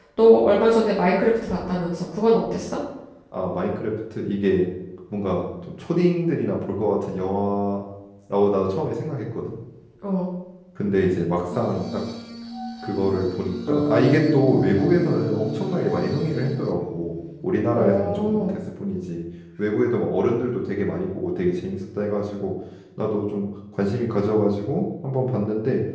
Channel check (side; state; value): both; identical; correlation 1.00